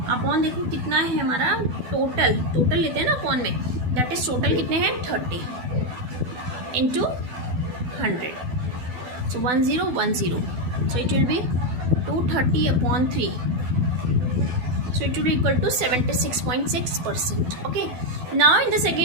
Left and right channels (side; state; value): left; late; 12 ms